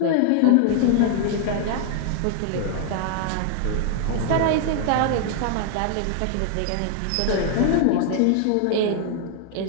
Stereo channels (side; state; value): both; different; correlation 0.00